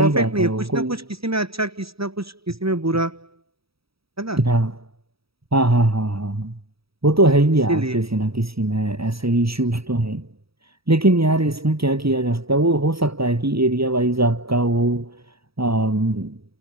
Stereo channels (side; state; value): left; late; 0.76 ms